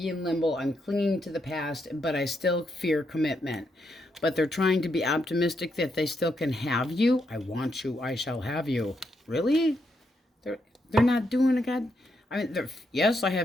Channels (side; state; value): both; normal; correlation 0.80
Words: in limbo. I'm clinging to the past, but I still fear commitment. But they're trying to be optimistic that they still can have you. I want you. I shall have you. Really? They're not doing a god. I mean, yes, I